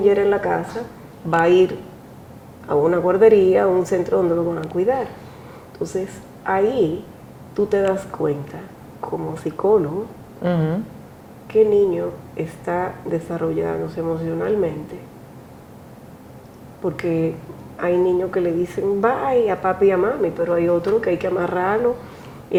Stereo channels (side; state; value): both; identical; correlation 1.00